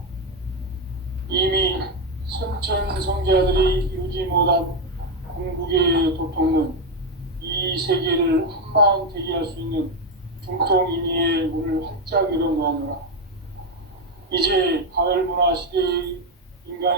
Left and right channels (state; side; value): normal; both; correlation 0.07